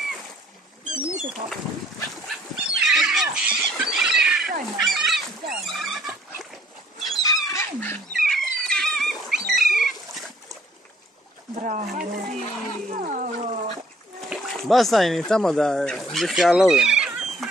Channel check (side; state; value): both; normal; correlation 0.62